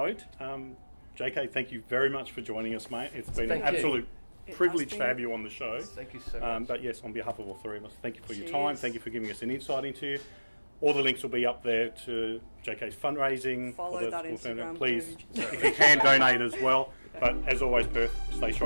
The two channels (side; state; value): both; inverted; correlation -1.00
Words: JK, thank you very much for joining us, mate. It's been an absolute privilege to have you on the show. Thank you so much. But yes, on behalf of all three of us, thank you for your time. Thank you for giving us an insight into you. All the links will be up there to JK's fundraising. Follow that Instagram. Please, if you can, donate as well. But as always, Perth, stay